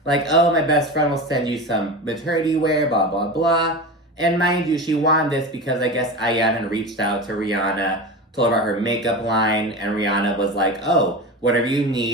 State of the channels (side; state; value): both; normal; correlation 0.26